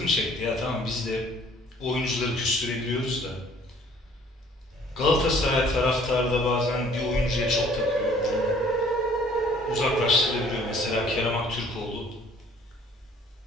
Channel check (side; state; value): both; normal; correlation 0.56